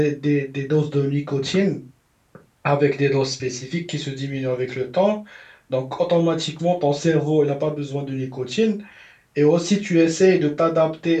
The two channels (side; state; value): both; identical; correlation 1.00